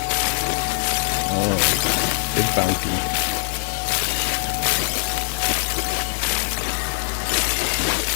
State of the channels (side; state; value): right; silent; digital silence